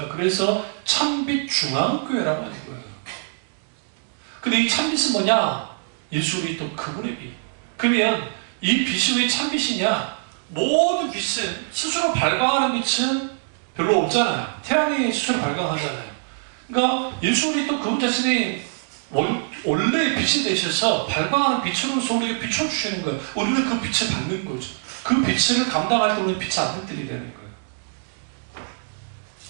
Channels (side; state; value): left; silent; digital silence